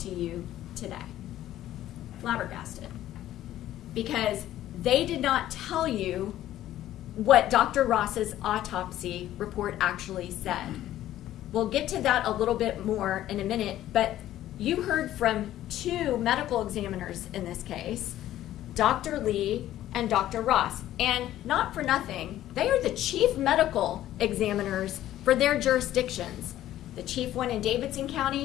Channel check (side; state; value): right; quieter; 13.3 dB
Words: to you today. Flabbergasted. Because they did not tell you what Dr. Ross's autopsy report actually said. We'll get to that a little bit more in a minute, but you heard from two medical examiners in this case, Dr. Lee and Dr. Ross. And not for nothing, they are the chief medical examiners for their jurisdictions. The chief one in Davidson